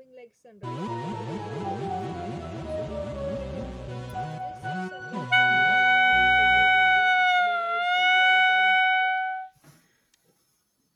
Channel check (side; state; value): both; identical; correlation 1.00